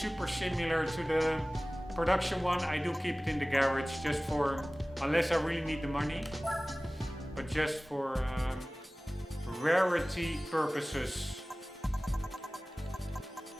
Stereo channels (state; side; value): normal; both; correlation 0.98